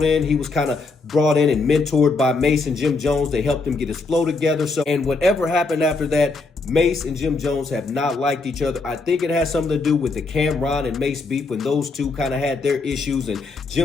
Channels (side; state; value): right; quieter; 3.8 dB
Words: in. He was kind of brought in and mentored by Mase and Jim Jones. They helped him get his flow together. And whatever happened after that, Mase and Jim Jones have not liked each other. I think it has something to do with the Cameron and Mase beef when those two kind of had their issues, and